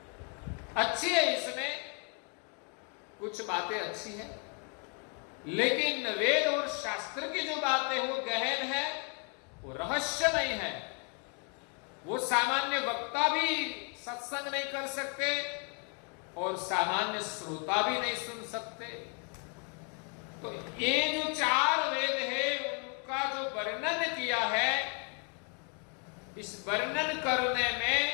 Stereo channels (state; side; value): quieter; right; 38.3 dB